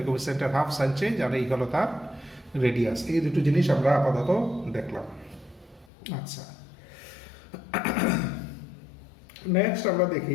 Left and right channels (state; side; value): drops out; right; at 5.9 s